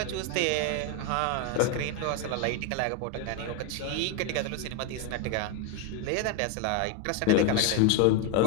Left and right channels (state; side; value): different; both; correlation 0.01